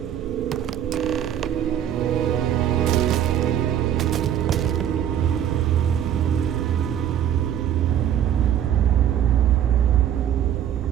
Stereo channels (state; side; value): quieter; left; 10.1 dB